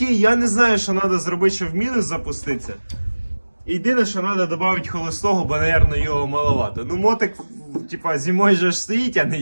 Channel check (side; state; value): both; inverted; correlation -1.00